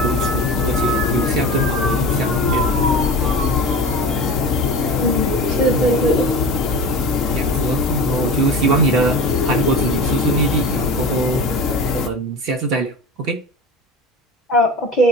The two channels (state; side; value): normal; both; correlation 0.31